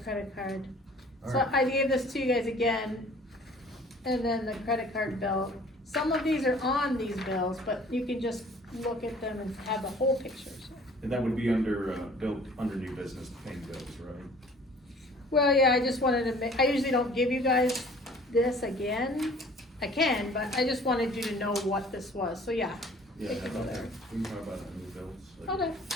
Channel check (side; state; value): both; normal; correlation 0.51